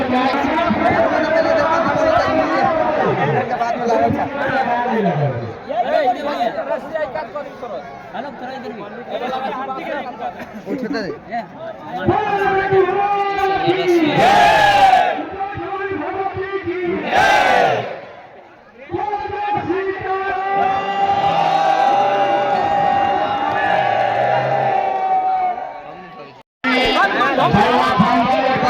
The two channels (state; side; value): identical; both; correlation 1.00